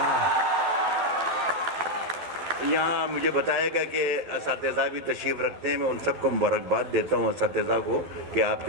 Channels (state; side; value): late; left; 12 ms